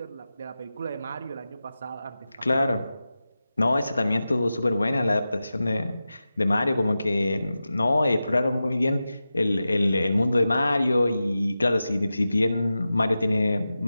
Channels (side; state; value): both; inverted; correlation -0.93